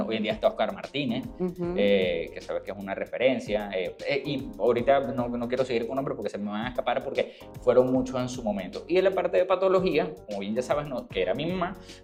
hoy en día está Oscar Martínez, que sabes que es una referencia, y ahorita no quiero seguir con nombres porque se me van a escapar porque fueron muchos en su momento. Y en la parte de patología, como bien ya sabes, que era mi mamá,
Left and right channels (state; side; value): identical; both; correlation 1.00